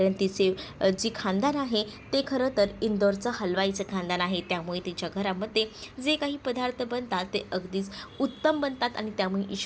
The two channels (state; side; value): identical; both; correlation 1.00